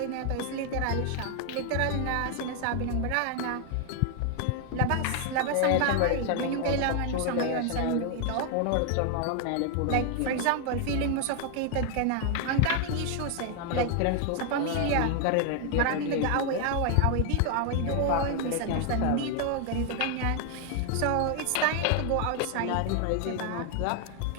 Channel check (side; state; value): both; different; correlation 0.00